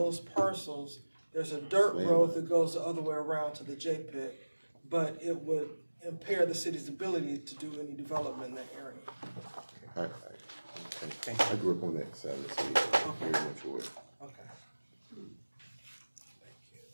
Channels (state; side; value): inverted; both; correlation -1.00